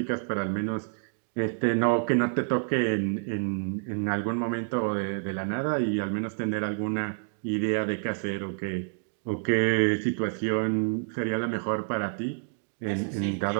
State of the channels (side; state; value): left; silent; digital silence